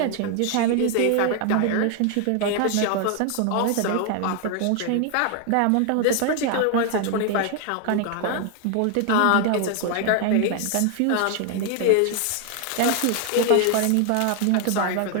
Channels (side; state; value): both; different; correlation 0.00